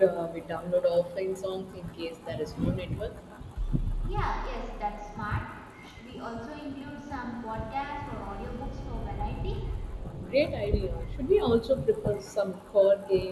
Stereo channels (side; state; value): both; identical; correlation 1.00